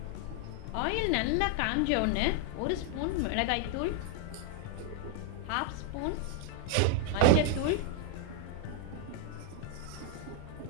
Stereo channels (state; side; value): different; both; correlation 0.00